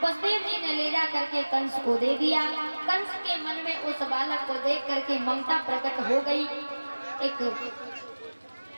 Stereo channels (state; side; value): inverted; both; correlation -1.00